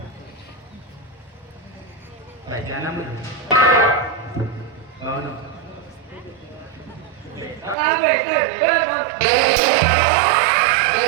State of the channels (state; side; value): drops out; left; at 7.8 s